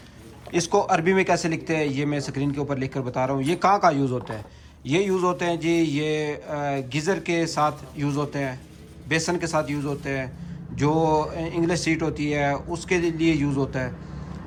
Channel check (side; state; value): both; identical; correlation 1.00